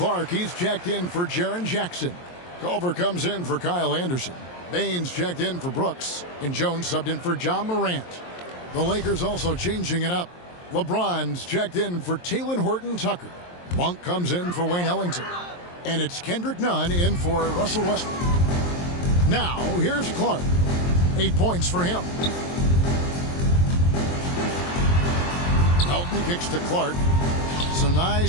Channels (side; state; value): right; late; 23 ms